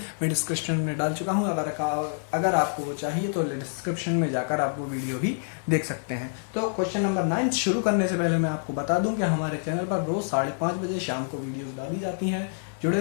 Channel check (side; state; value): right; silent; digital silence